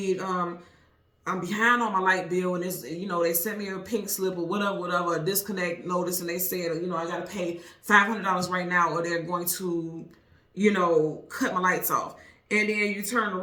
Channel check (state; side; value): identical; both; correlation 1.00